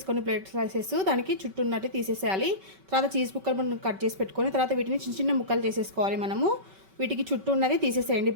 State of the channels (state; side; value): late; left; 5.3 ms